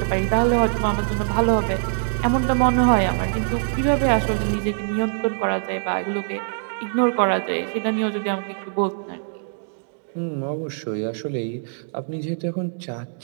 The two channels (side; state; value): left; silent; digital silence